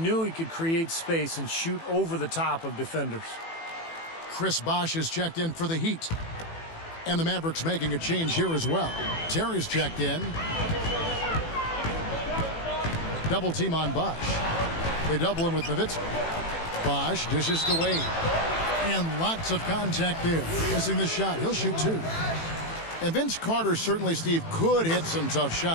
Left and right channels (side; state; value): right; late; 18 ms